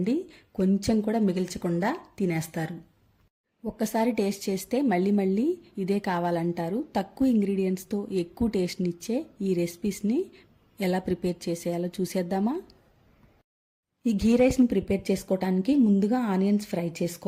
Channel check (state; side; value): identical; both; correlation 1.00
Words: కొంచెం కూడా మిగిల్చకుండా తినేస్తారు. ఒక్కసారి టేస్ట్ చేస్తే మళ్ళీ మళ్ళీ ఇదే కావాలంటారు. తక్కువ ఇంగ్రీడియంట్స్తో ఎక్కువ టేస్ట్నిచ్చే ఈ రెసిపీస్ని ఎలా ప్రిపేర్ చేసేయాలో చూసేద్దామా? ఈ గీ రైస్ని ప్రిపేర్ చేసుకోవడానికి ముందుగా ఆనియన్స్ ఫ్రై